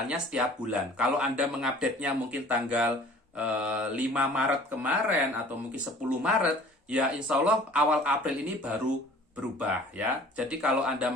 setiap bulan. Kalau Anda mengupdate-nya mungkin tanggal 5 Maret kemarin atau mungkin 10 Maret, ya insya Allah awal April ini baru berubah ya. Jadi kalau Anda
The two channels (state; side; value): normal; both; correlation 0.49